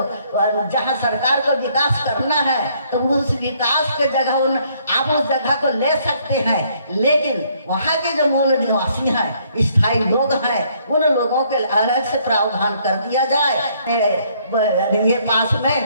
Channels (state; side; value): inverted; both; correlation -0.66